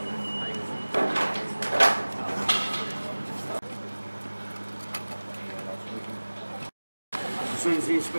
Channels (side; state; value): both; inverted; correlation -1.00